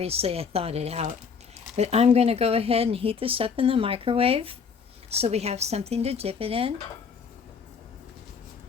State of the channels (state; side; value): quieter; right; 6.0 dB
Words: I thawed it out. But I'm going to go ahead and heat this up in the microwave so we have something to dip it in.